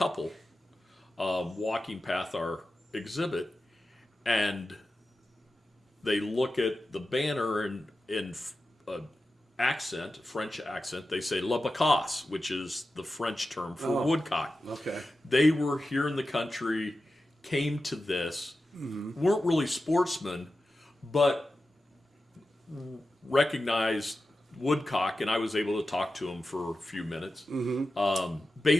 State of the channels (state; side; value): normal; both; correlation 0.93